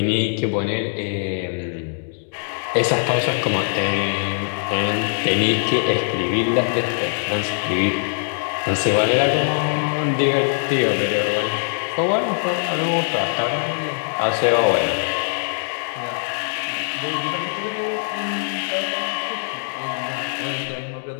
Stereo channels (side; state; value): right; silent; digital silence